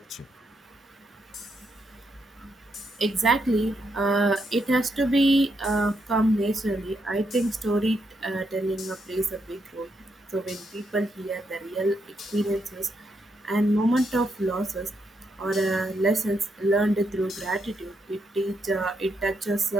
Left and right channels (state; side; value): normal; both; correlation 0.79